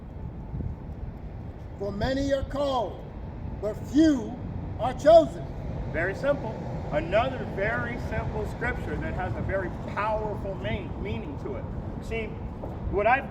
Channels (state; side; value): identical; both; correlation 1.00